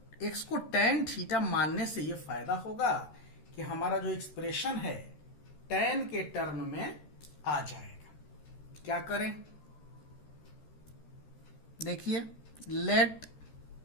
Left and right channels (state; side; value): late; right; 13 ms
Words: x को tan थीटा मानने से यह फायदा होगा कि हमारा जो एक्सप्रेशन है tan के टर्म में आ जाएगा। क्या करें, देखिए, let